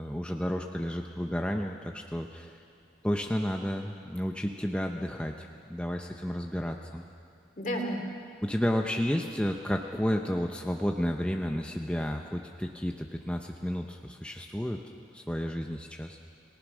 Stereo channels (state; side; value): normal; both; correlation 0.93